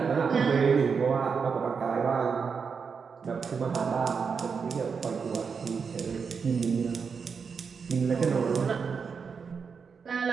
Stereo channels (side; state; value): left; quieter; 5.8 dB